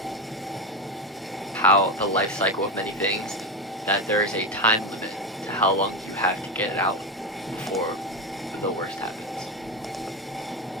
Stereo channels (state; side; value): normal; both; correlation 0.15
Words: how the life cycle of many things, that there is a time limit to how long you have to get it out before the worst happens.